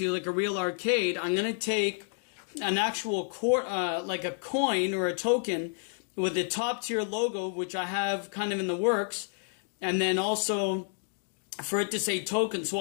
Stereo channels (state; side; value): silent; right; digital silence